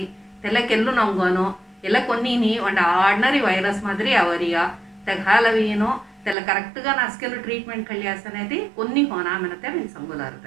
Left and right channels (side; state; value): left; drops out; at 6.4 s